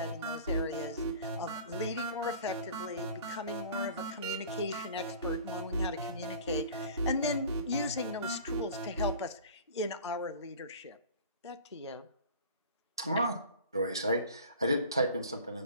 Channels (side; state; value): both; inverted; correlation -0.42